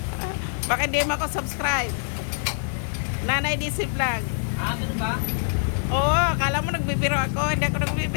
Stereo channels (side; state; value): right; silent; digital silence